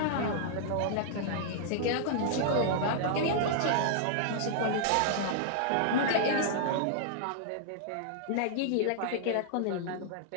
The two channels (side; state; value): both; different; correlation -0.01